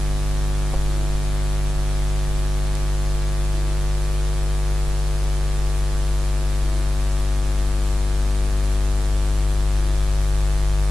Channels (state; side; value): normal; both; correlation 0.94